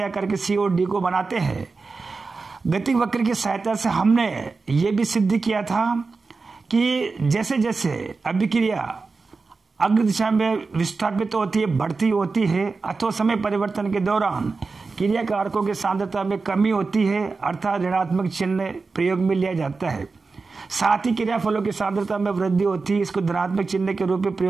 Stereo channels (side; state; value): left; quieter; 4.2 dB